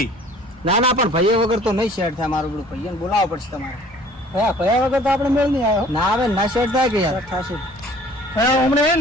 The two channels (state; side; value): normal; both; correlation 0.52